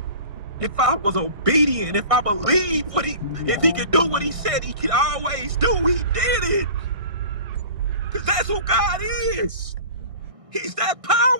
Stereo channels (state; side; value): late; left; 1.6 ms